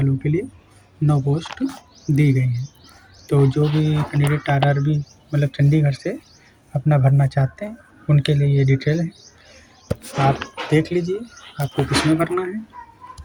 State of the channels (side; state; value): both; identical; correlation 1.00